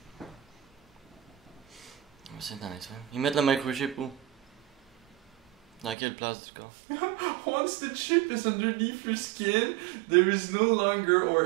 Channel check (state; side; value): drops out; left; at 6.0 s